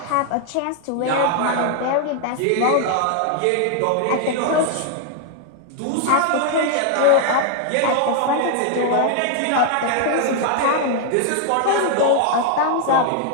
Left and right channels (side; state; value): both; different; correlation 0.00